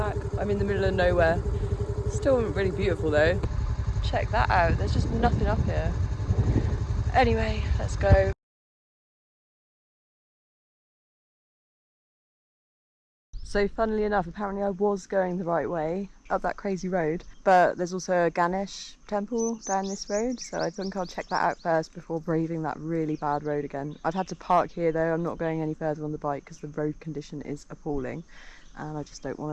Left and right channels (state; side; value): identical; both; correlation 1.00